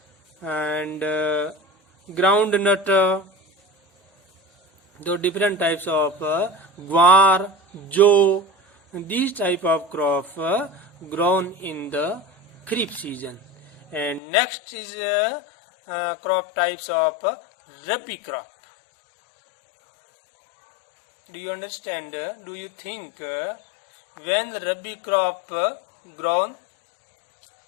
and groundnut. The different types of guar, jo, these type of crop grown in the kharif season. And next is crop types of rabi crop. Do you understand? Do you think when the rabi crop grown?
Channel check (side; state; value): right; drops out; at 14.2 s